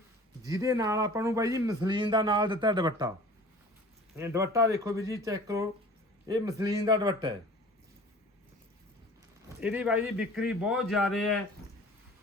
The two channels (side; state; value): both; normal; correlation 0.44